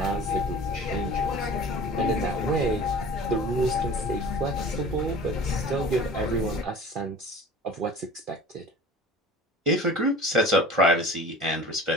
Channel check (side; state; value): both; normal; correlation 0.41